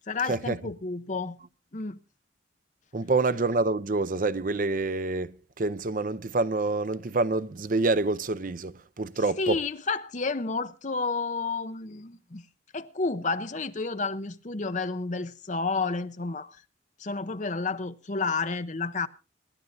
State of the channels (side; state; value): both; normal; correlation 0.11